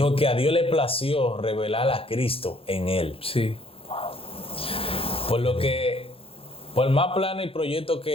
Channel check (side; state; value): right; late; 0.27 ms